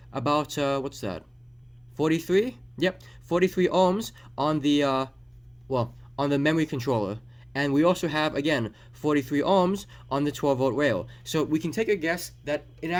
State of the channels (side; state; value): both; identical; correlation 1.00